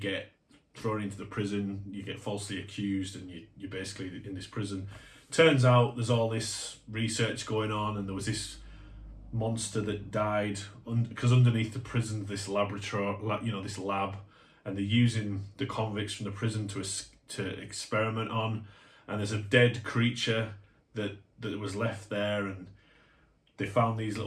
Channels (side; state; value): both; identical; correlation 1.00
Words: thrown into the prison. You get falsely accused, and you're basically in this prison. Turns out there's all this research going on, and there was this monster that died because underneath the prison, this laboratory, you know, this lab, and they're using the convicts from the prison to experiment on, and there's a dead creature that was left there, and they found these